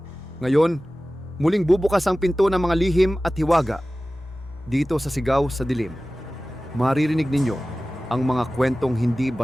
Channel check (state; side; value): normal; both; correlation 0.96